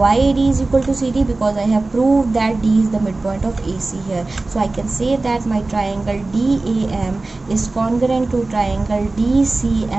AD is equal to CD? Because I have proved that D is the midpoint of AC here. So I can say that my triangle DAM is congruent to triangle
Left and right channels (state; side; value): quieter; left; 3.3 dB